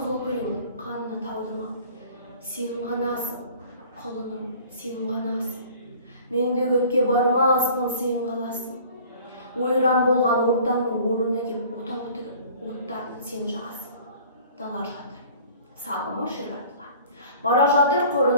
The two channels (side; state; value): both; inverted; correlation -0.48